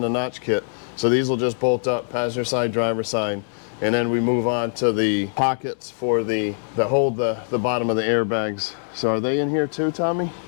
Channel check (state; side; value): silent; right; digital silence